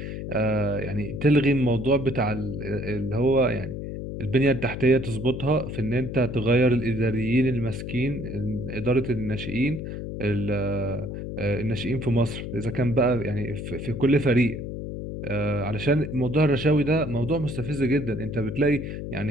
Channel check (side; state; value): left; noise; hum, 7 dB below the sound